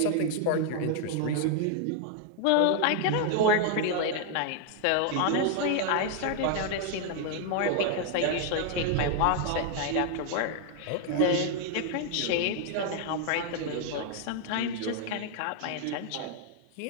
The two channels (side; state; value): both; different; correlation 0.00